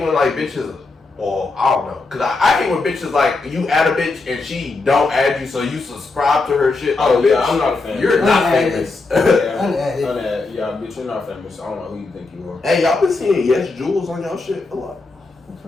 when bitches. Well, I don't know, cause I hate when bitches you add a bitch and she don't add you, so you subscribe to her shit. Oh yeah, I'm not a fan. You're not famous. Unadded. Yeah, bitch, you're not famous. I don't know who you think you are. Hey, y'all been seeing Yes Jules on y'all shit a lot. What the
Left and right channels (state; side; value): quieter; right; 3.6 dB